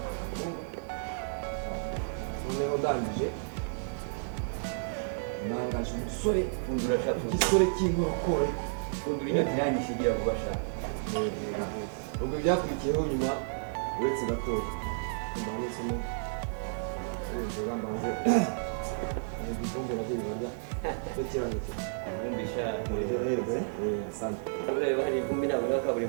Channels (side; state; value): left; silent; digital silence